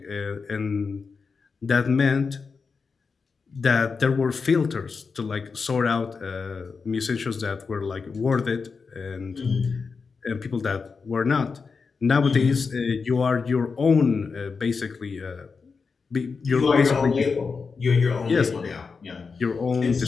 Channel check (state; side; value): quieter; right; 5.0 dB